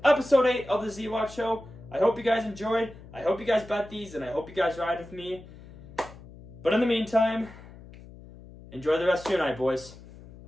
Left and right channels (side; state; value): left; noise; hum, 18 dB below the sound